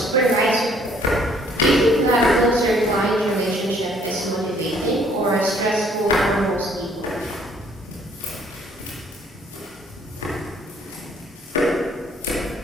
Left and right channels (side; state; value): both; normal; correlation 0.62